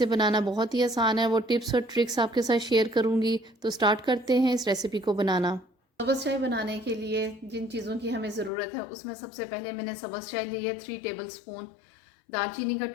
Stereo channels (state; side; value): drops out; right; at 8.5 s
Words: बनाना बहुत ही आसान है। वो टिप्स और ट्रिक्स आपके साथ शेयर करूँगी। तो स्टार्ट करते हैं इस रेसिपी को बनाना। सब्ज़ चाय बनाने के लिए जिन चीज़ों की हमें ज़रूरत है, उसमें सबसे पहले मैंने सब्ज़ चाय ली है 3 टेबल स्पून, दालचीनी का